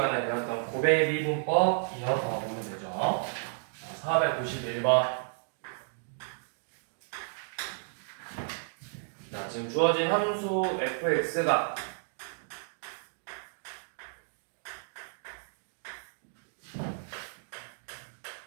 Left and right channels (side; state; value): left; silent; digital silence